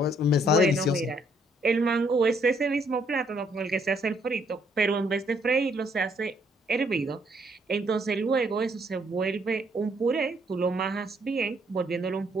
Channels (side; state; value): both; normal; correlation 0.69